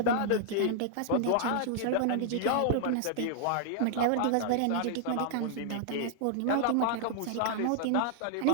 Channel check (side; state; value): both; different; correlation -0.01